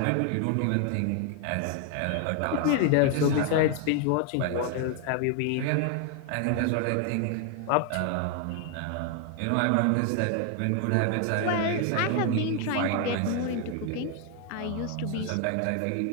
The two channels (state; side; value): different; both; correlation 0.00